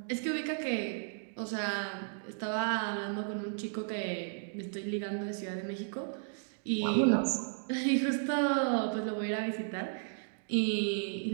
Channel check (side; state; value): left; silent; digital silence